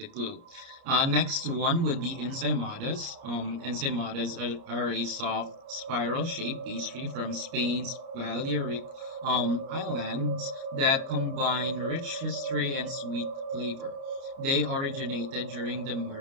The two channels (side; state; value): left; late; 30 ms